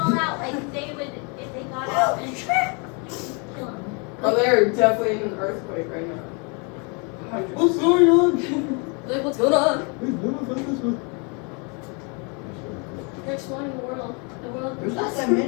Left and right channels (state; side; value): quieter; right; 33.9 dB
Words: out like they would if they got out and kill them. Oh, they're definitely in an earthquake right now. What's going on? Like, what's going on? They're exploring the world. The world. There's not that